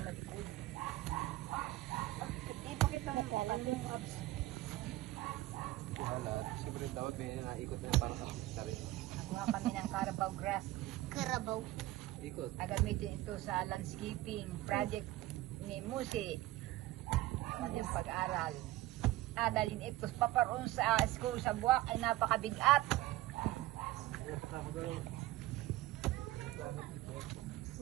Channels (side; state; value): left; quieter; 17.4 dB